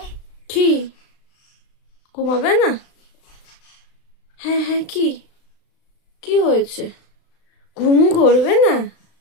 কি ঘুমাবে না? হ্যাঁ হ্যাঁ, কি কি হয়েছে? ঘুমু করবে না?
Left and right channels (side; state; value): right; late; 35 ms